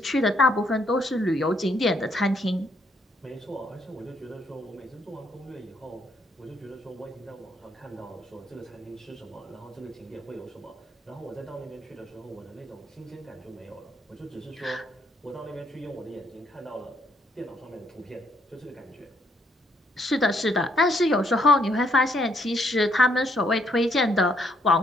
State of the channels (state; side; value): normal; both; correlation 0.71